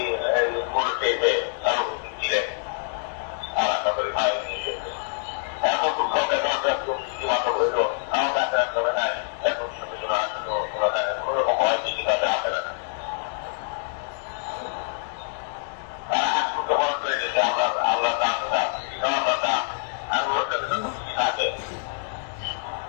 মনে তারা উপস্থিত ছিলেন। আর আপনাদের ভাই নিয়ে গেছে এত দুঃখ মাত্র হইল আমার কাছে রাখতে হবে নাই। এখন কোনোরকম হয় কিছু কাছে আসে না। তারা হাত করতে বন্ধ করে দিয়েছে। আল্লাহ দাম থাকে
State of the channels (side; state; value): right; silent; 61 dB below the other